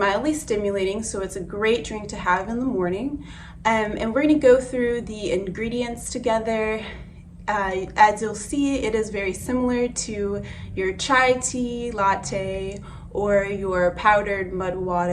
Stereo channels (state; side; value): identical; both; correlation 1.00